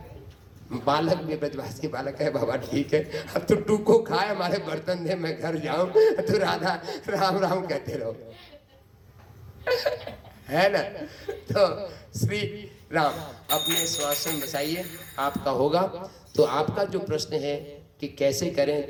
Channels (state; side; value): identical; both; correlation 1.00